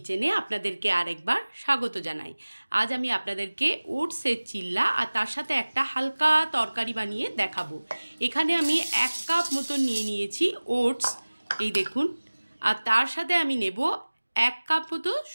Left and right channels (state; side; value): inverted; both; correlation -1.00